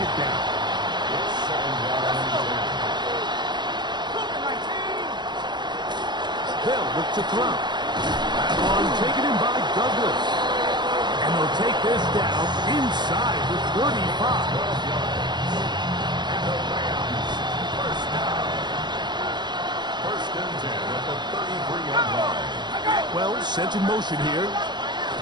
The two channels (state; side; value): late; left; 0.21 ms